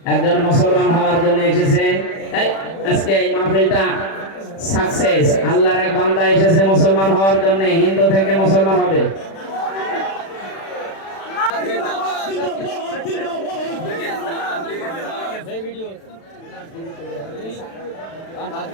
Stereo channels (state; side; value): late; right; 36 ms